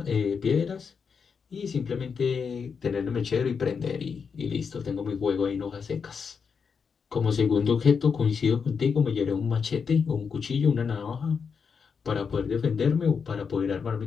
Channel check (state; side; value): quieter; right; 6.0 dB